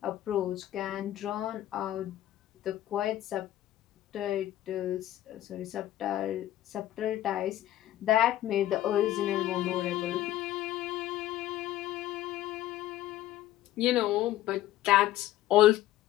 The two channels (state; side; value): quieter; right; 13.8 dB